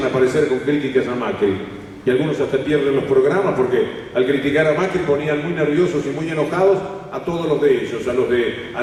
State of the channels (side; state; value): both; identical; correlation 1.00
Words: a aparecer con críticas a Macri. y algunos hasta pierden los programas porque al criticar a Macri ponían muy nerviosos y muy enojados a todos los de ellos, a los de